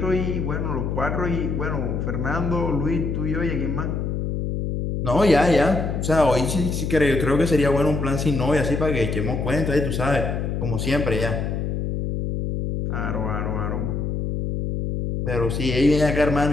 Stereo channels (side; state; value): left; noise; hum, 2 dB below the sound